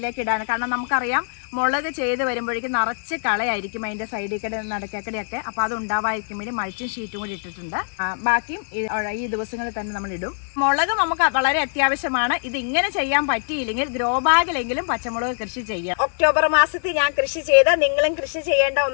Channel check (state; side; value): silent; right; digital silence